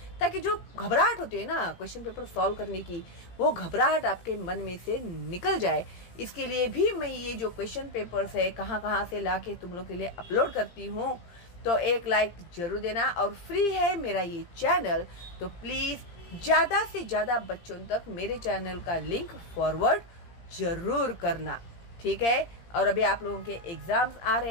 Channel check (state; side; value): late; right; 17 ms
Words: ताकि जो घबराहट होती है ना क्वेश्चन पेपर सॉल्व करने की, वो घबराहट आपके मन में से निकल जाए। इसके लिए भी मैं ये जो क्वेश्चन पेपर्स है कहाँ से लाके तुम लोग के लिए अपलोड करती हूँ। तो एक लाइक जरूर देना, और फ्री है मेरा ये चैनल, तो प्लीज ज्यादा से ज्यादा बच्चों तक मेरे चैनल का लिंक फॉरवर्ड जरूर करना। ठीक है, और अभी आप लोगों के एग्जाम्स आ